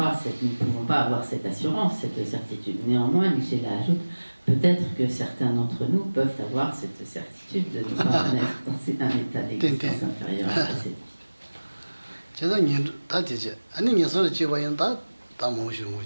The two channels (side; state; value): both; inverted; correlation -1.00